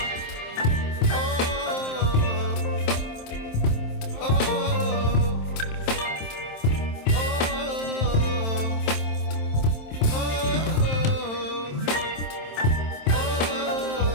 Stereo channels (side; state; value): right; late; 27 ms